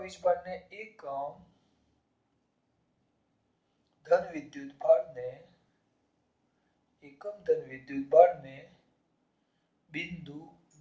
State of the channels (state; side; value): identical; both; correlation 1.00